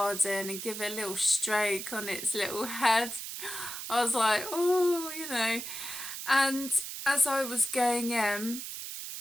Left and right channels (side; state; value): right; noise; hiss, 7 dB below the sound